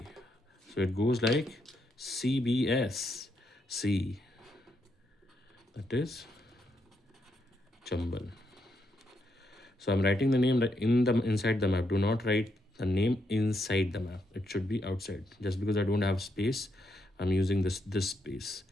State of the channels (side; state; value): both; normal; correlation 0.79